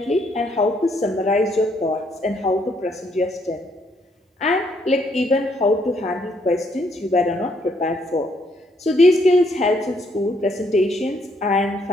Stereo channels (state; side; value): normal; both; correlation 0.71